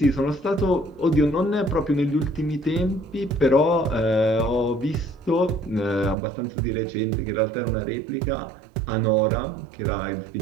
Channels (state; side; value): drops out; left; at 6.2 s